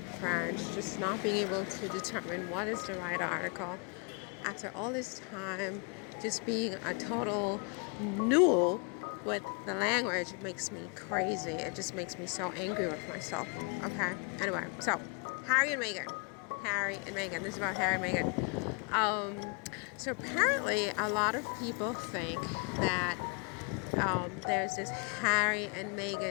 French, just not being able to determine what is the right article. After all this time, just being a total null with the language, it makes me crazy. It just makes me so angry with myself. Okay? Anyway, so Harry and Meghan. This is about Harry and Meghan. So apparently a lot of people think that there's this Harry and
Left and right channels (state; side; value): quieter; right; 35.6 dB